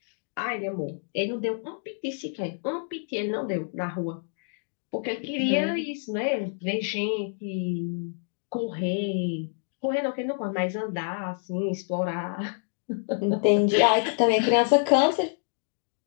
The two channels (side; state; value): right; silent; digital silence